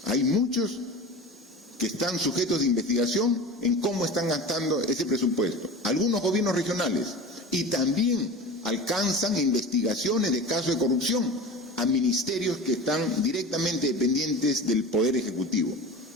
hay muchos que están sujetos de investigación en cómo están gastando ese presupuesto. Algunos gobiernos regionales, y también alcanzan investigaciones de casos de corrupción a ministerios que están directamente dependientes del Poder Ejecutivo.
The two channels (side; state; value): both; normal; correlation 0.34